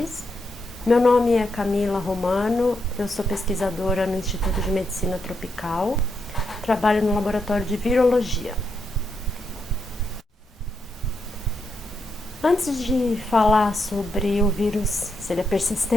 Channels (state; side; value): normal; both; correlation 0.82